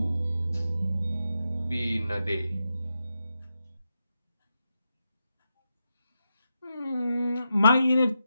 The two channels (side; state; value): both; inverted; correlation -0.87